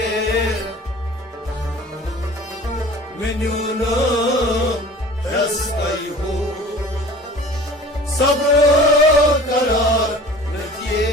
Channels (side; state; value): both; normal; correlation 0.43